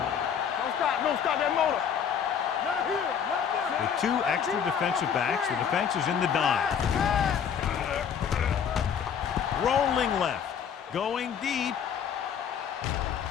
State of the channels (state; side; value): quieter; right; 7.8 dB